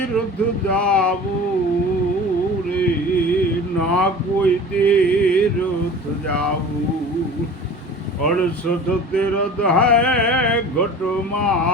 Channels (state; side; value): normal; both; correlation 0.39